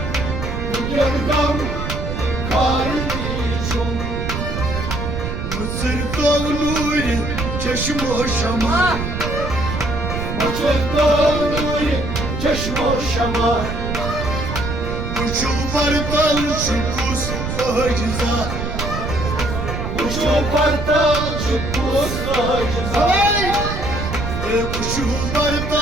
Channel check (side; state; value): right; noise; rumble, 4 dB below the sound